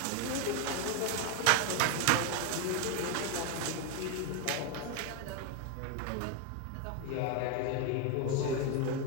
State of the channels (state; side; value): different; both; correlation 0.01